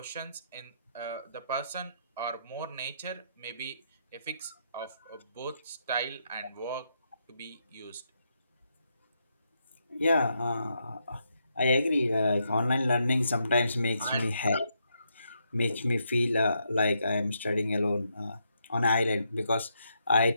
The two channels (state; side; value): inverted; both; correlation -0.79